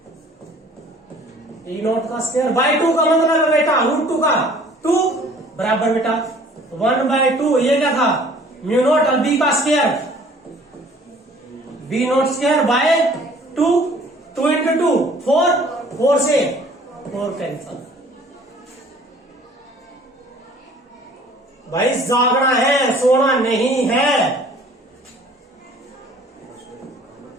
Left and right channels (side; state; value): both; normal; correlation 0.53